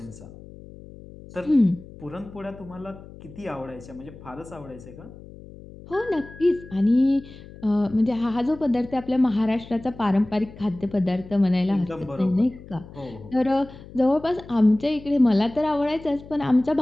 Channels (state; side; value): noise; left; hum, 18 dB below the sound